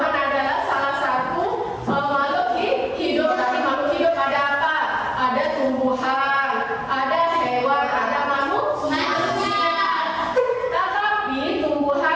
adalah salah satu makhluk hidup. Dari makhluk hidup ada apa? Ada tumbuhan, ada hewan, ada manusia. Tetapi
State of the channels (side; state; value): both; identical; correlation 1.00